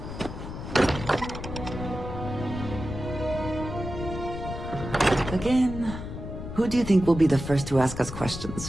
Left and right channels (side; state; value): left; noise; rumble, 8 dB below the sound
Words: Again, who do you think will be the first to ask us